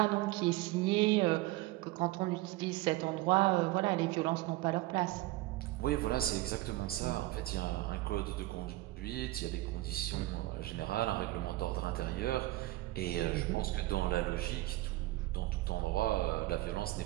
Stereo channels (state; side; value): quieter; left; 18.4 dB